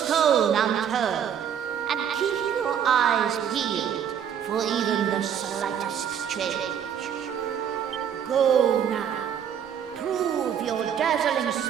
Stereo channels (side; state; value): left; quieter; 8.6 dB